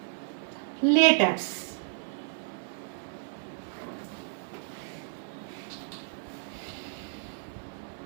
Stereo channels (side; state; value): left; silent; 56 dB below the other